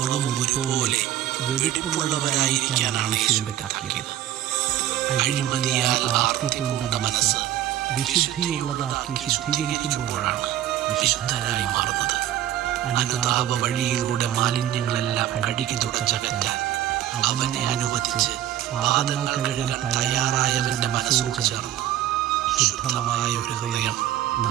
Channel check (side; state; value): left; quieter; 12.3 dB